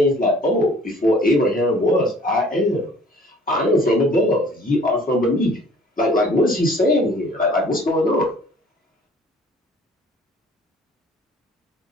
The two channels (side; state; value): both; normal; correlation 0.53